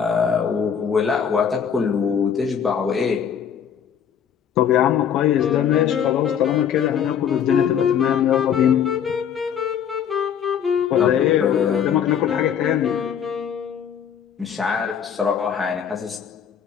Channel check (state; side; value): quieter; right; 8.2 dB